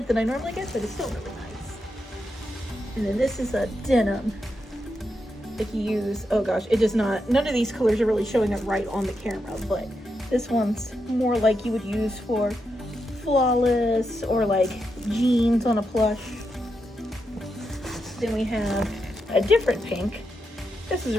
that I normally get, but it's still really nice. And then this is a denim. If you use, oh gosh, it does not, none of these colors are really showing up right on the camera, but this one's more like you would use for Flawless or like jeans on a plush. Then we have a different pink. This is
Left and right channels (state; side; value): normal; both; correlation 0.85